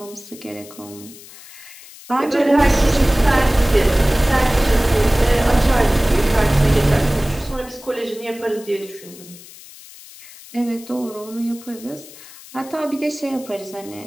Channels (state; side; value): noise; left; hiss, 19 dB below the sound